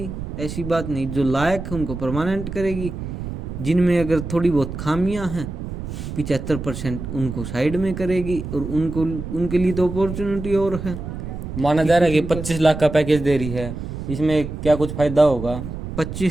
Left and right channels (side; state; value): right; noise; rumble, 7 dB below the sound